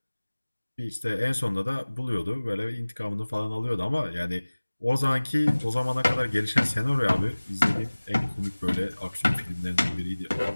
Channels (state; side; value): inverted; both; correlation -1.00